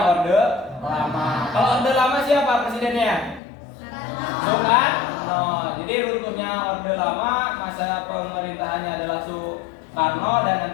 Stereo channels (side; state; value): right; drops out; at 3.4 s